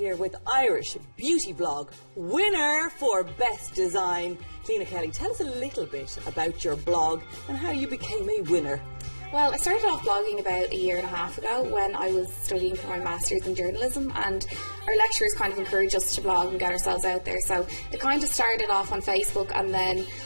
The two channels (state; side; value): inverted; both; correlation -1.00